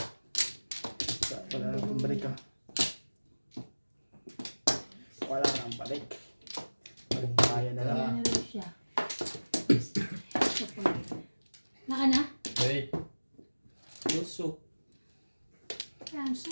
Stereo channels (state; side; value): inverted; both; correlation -1.00